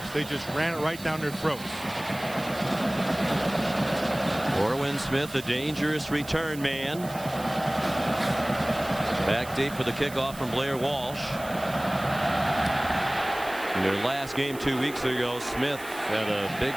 They just ran it right down their throats. Orwin Smith, the dangerous return man. Back deep for the kickoff from Blair Walsh. In their last game 2 weeks ago, Smith had a big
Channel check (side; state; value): right; noise; hiss, 16 dB below the sound